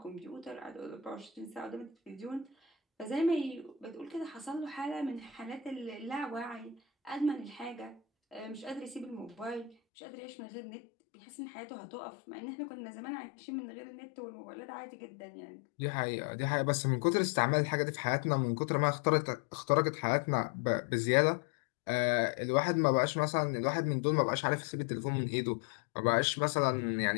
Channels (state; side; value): drops out; right; at 9.8 s